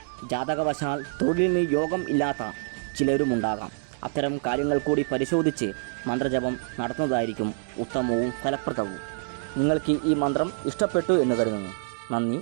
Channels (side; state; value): left; silent; digital silence